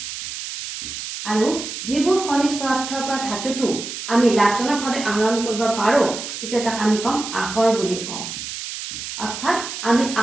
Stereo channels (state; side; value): noise; right; hiss, 8 dB below the sound